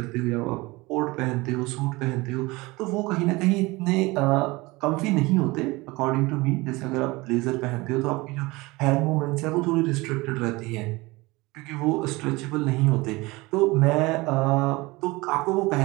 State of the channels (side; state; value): left; quieter; 22.5 dB